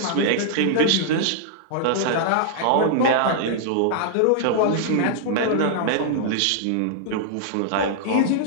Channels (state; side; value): different; both; correlation -0.01